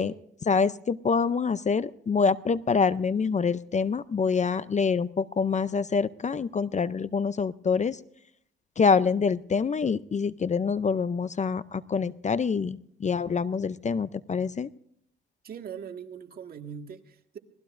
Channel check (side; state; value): right; quieter; 5.0 dB